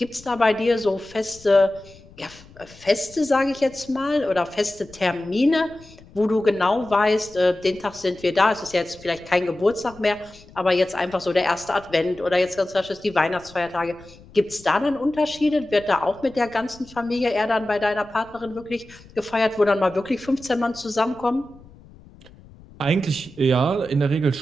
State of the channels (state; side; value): noise; left; rumble, 23 dB below the sound